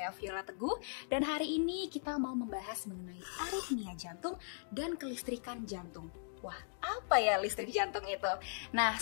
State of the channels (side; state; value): right; silent; digital silence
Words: Viola Teguh. Dan hari ini kita mau membahas mengenai aritmia jantung dan kelistrikan jantung. Wah, apa ya listrik jantung itu? Nah,